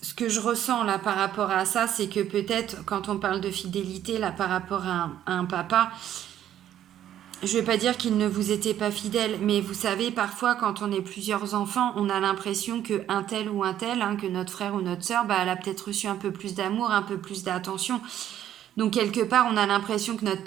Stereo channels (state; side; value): quieter; left; 11.2 dB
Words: ce que je ressens là par rapport à ça, c'est que peut-être quand on parle de fidélité là par rapport à un papa, je ne vais pas dire qu'il ne vous était pas fidèle, mais vous savez, parfois quand on est plusieurs enfants, on a l'impression qu'un tel ou un tel, hein, que notre frère ou notre sœur, bah, elle a peut-être reçu un peu plus d'amour, un peu plus d'attention. Donc quelque part, on a l'impression que notre